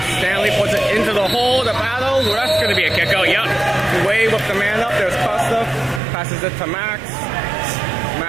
Stanley puts it into the hole, the battle. That's going to be a kick out. Yep. Way with the man up. There's Costa. Passes it to Max.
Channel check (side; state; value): left; drops out; at 6.0 s